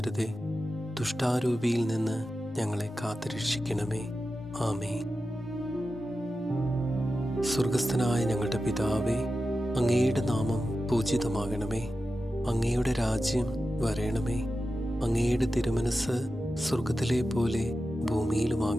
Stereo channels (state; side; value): normal; both; correlation 0.92